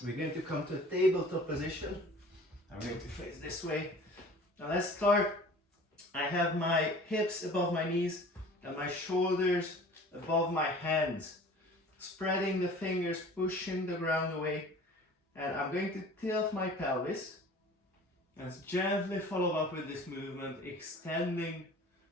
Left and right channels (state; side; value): normal; both; correlation 0.45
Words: going to come to a tabletop position. I'm going to face this way. Now let's start. I have my hips above my knees and my shoulders above my hands. Spreading the fingers, pushing the ground away. And I'm going to tilt my pelvis. Let's gently follow up with this movement, extending